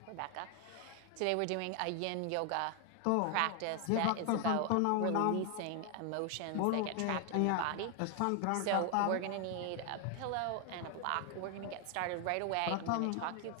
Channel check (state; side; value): different; both; correlation 0.00